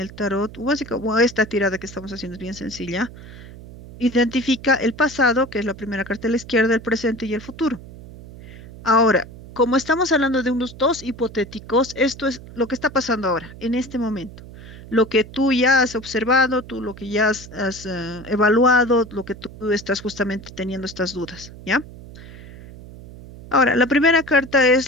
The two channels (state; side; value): noise; right; hum, 16 dB below the sound